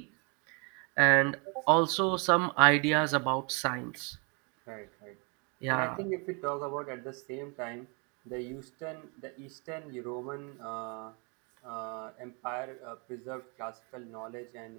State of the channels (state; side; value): quieter; left; 33.5 dB